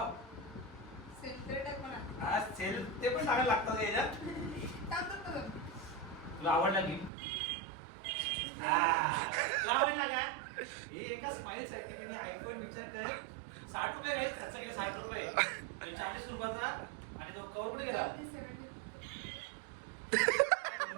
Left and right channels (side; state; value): left; drops out; at 7.1 s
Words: हा सेल ते पण चांगलं लागतं याच्यात. तुला आवडला की तुला आवडला का? हे एका स्माईल साठी मी आयफोन विचार कर 60 रुपये घ्यायचे खर्च केले. 60 रुपये 40 रुपयाचा. आणि तो कवर कुठे गेला?